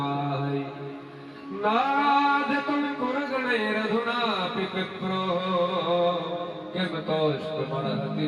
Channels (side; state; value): both; identical; correlation 1.00